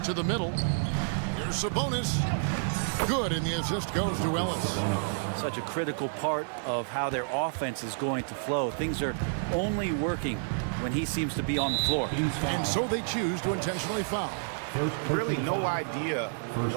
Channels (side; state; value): left; silent; digital silence